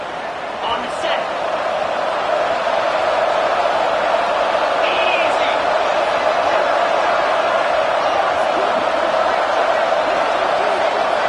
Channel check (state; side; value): identical; both; correlation 1.00